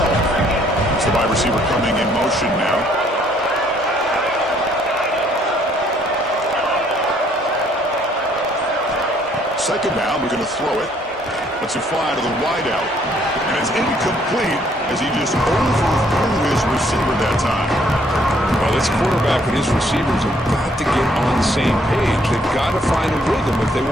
It's the wide receiver coming in motion now. Second down, we're going to throw it. Let's it fly to the wideout. And it's incomplete as he just overthrew his receiver that time. Well, this quarterback and his receivers have got to get on the same page. They've got to find a rhythm if they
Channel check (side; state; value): both; normal; correlation 0.65